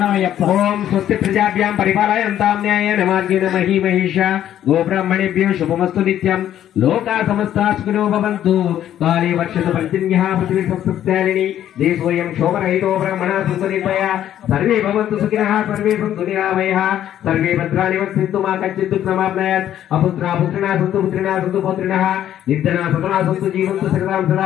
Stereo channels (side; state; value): right; quieter; 11.3 dB